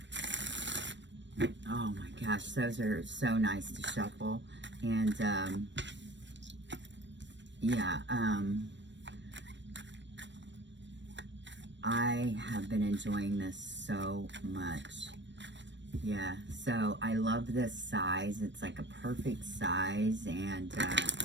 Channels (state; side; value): late; left; 0.53 ms